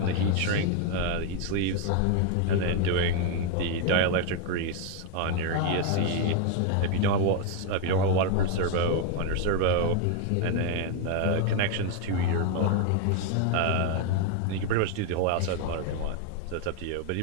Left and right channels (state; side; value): different; both; correlation 0.01